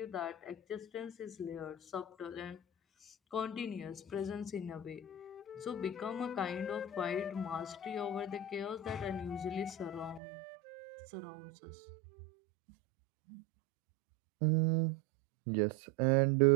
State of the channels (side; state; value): left; drops out; at 10.2 s